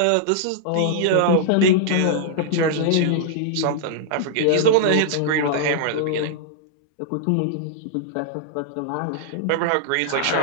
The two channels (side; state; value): both; different; correlation -0.01